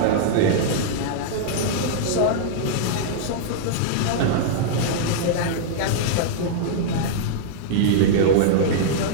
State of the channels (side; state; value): both; different; correlation -0.02